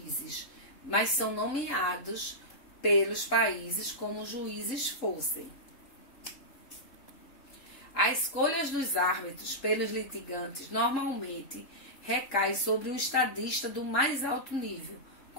mas são nomeados pelos países como juízes fossem. As escolhas dos árbitros pelos litigantes normalmente recai sobre um estadista do mais alto nível,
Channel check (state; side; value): late; right; 3.8 ms